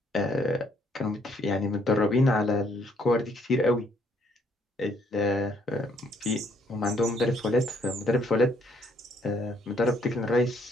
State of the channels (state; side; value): normal; both; correlation 0.68